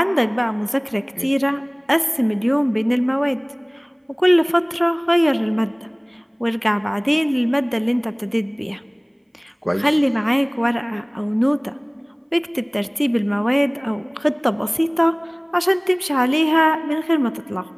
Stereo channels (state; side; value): identical; both; correlation 1.00